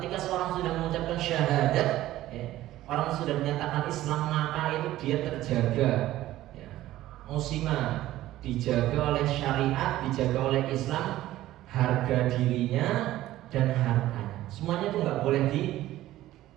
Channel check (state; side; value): quieter; left; 14.9 dB